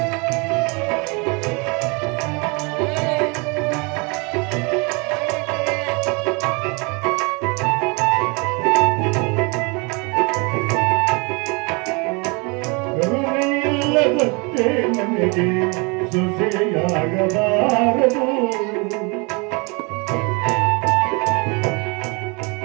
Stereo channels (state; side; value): quieter; left; 30.6 dB